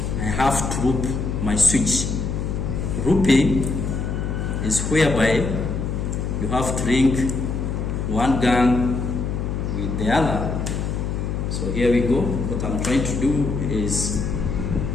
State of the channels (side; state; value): left; noise; hum, 2 dB below the sound